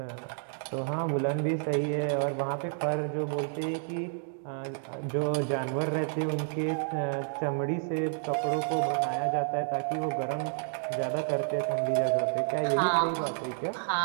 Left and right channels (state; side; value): silent; left; digital silence